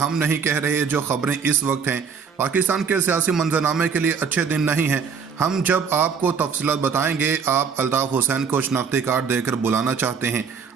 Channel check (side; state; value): left; quieter; 6.2 dB